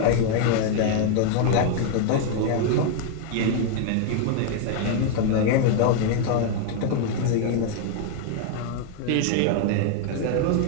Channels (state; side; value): different; both; correlation 0.00